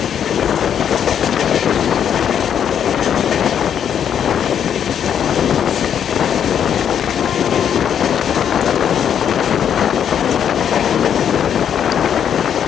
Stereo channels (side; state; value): right; quieter; 8.7 dB